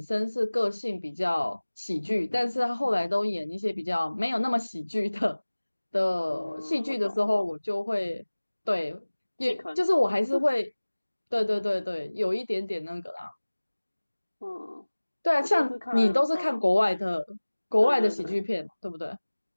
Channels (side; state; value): both; inverted; correlation -1.00